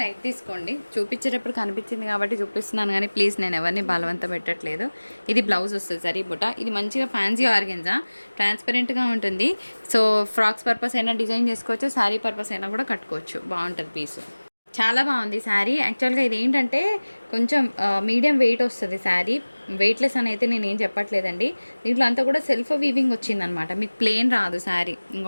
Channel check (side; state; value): both; inverted; correlation -1.00